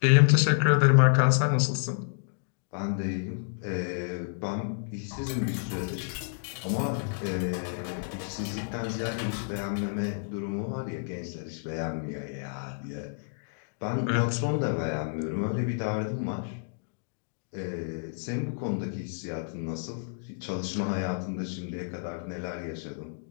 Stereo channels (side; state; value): right; silent; digital silence